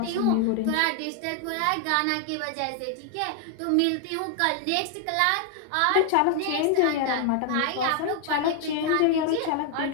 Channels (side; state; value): both; different; correlation 0.00